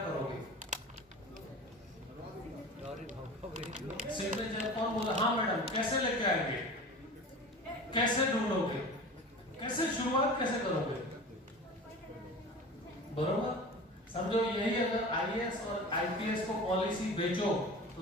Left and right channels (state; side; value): normal; both; correlation 0.36